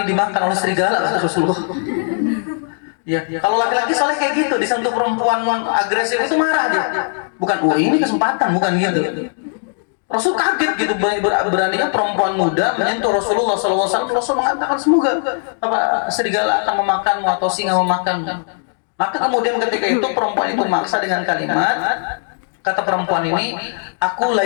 dimakan oleh serigala, kata Rasulullah. Ya, kalau laki-laki soalnya kayak gitu, disentuh perempuan agresif itu marah dia. Bukan, ini kesempatan, bukan gitu. Rasul kaget gitu, beraninya perempuan muda menyentuh Rasulullah SAW. Rasul mengatakan semoga serigala akan memakanmu atau singa memakanmu. Maka kemudian ketika itu perempuan itu maksa dengan kalimat, kata perempuan ini, aku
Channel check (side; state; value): right; silent; 67 dB below the other